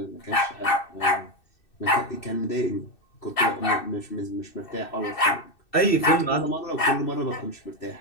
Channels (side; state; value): right; late; 2.6 ms